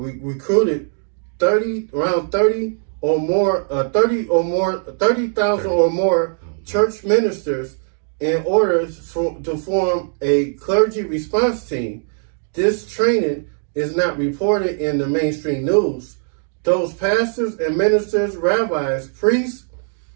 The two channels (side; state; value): left; silent; 66 dB below the other